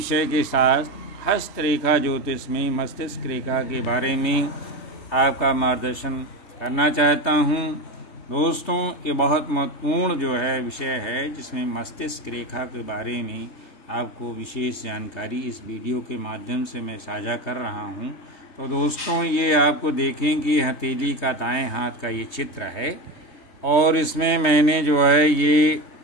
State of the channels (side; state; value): right; late; 3.2 ms